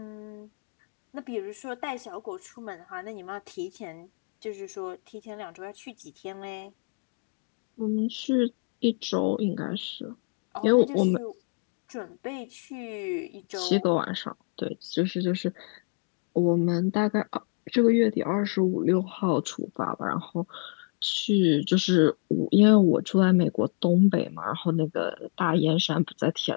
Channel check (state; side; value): quieter; right; 39.4 dB